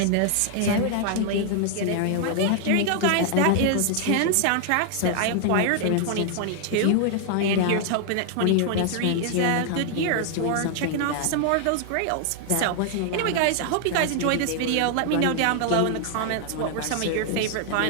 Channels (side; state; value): both; different; correlation 0.00